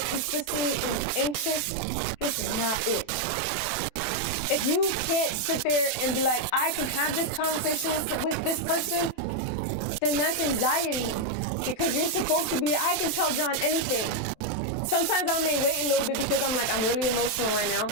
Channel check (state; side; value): late; right; 27 ms